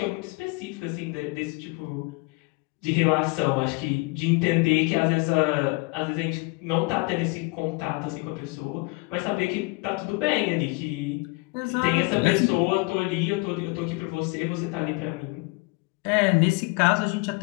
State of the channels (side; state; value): right; quieter; 26.9 dB